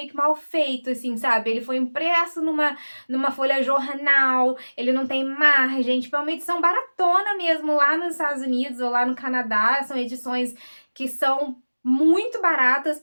que mal feito, assim, sabe? Ele foi impresso numa folha jornal, ele não tem margem, tipo, é uma edição baratona mesmo lá nos Estados Unidos ou lá no Canadá, são edições que são muito baratas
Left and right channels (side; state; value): both; inverted; correlation -1.00